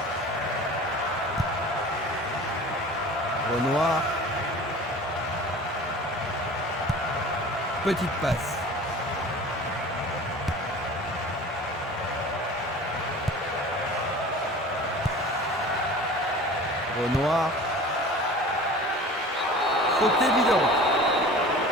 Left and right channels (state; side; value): normal; both; correlation 0.40